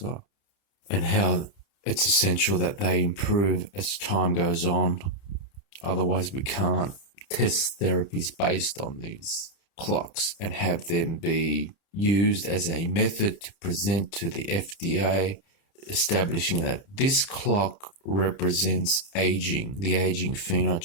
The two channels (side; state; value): right; late; 30 ms